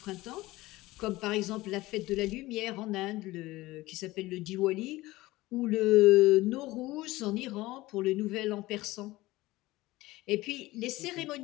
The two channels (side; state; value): right; quieter; 18.8 dB